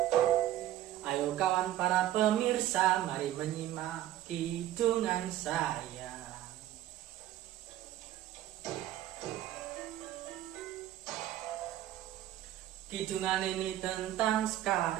Ayo kawan para pemirsa, mari menyimak kidungan saya. Kidungan ini tentang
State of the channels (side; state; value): left; quieter; 13.2 dB